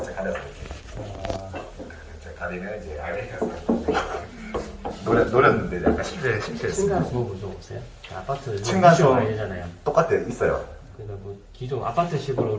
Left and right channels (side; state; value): both; identical; correlation 1.00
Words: 가려서 이렇게 가리면 이제 아메리칸 스탠다드. 노렸는데 약간 실패했어요. 층간소음 무서우세요? 아파트 층간소음. 많이 되잖아요. 똑같아요. 있어요. 그러니까 뭐 기존 아파트식으로